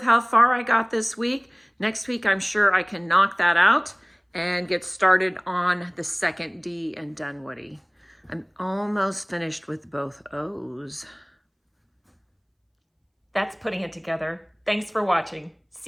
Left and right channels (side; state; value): both; identical; correlation 1.00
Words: how far I got this week. Next week, I'm sure I can knock that out and get started on the second D in Dunwoody. I'm almost finished with both O's. That's putting it together. Thanks for watching.